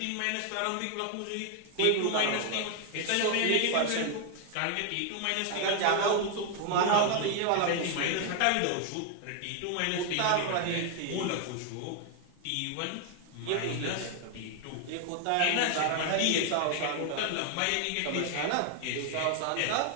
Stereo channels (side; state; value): both; different; correlation 0.00